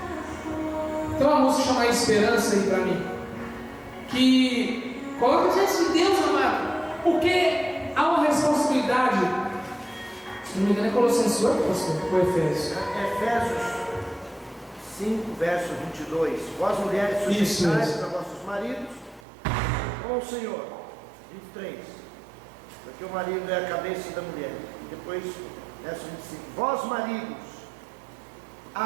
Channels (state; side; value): drops out; left; at 19.2 s